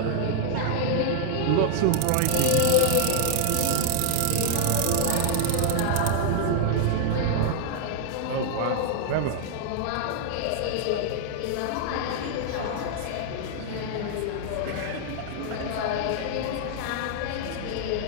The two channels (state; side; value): different; both; correlation -0.01